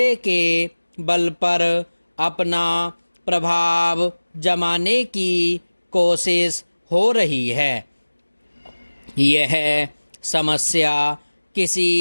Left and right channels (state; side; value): inverted; both; correlation -1.00